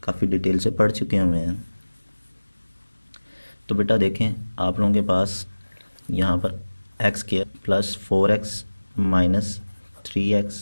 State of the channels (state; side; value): inverted; both; correlation -1.00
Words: काफ़ी डिटेल से पढ़ चुके हुए हैं। तो बेटा देखें, आप लोगों के पास यहाँ पर x square plus 4x minus